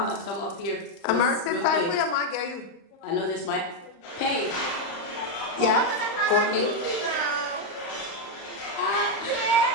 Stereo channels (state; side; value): late; right; 35 ms